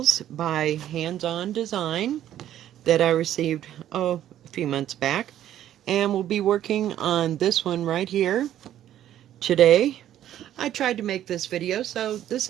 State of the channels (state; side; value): quieter; left; 11.7 dB